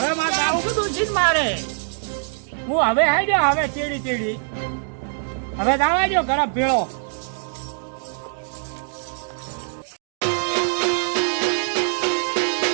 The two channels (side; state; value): left; silent; digital silence